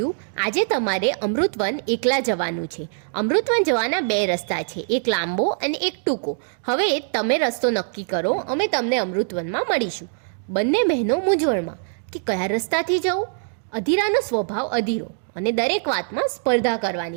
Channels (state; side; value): silent; left; digital silence